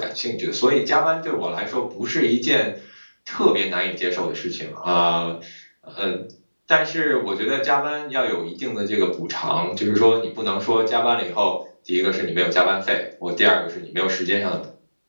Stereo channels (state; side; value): inverted; both; correlation -1.00